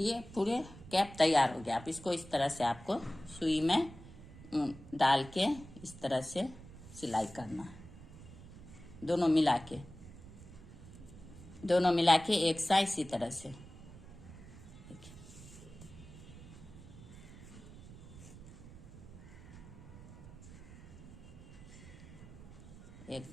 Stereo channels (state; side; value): noise; right; rumble, 16 dB below the sound